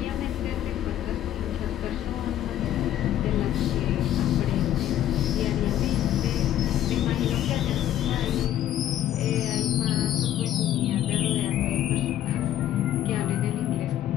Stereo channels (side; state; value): right; quieter; 11.9 dB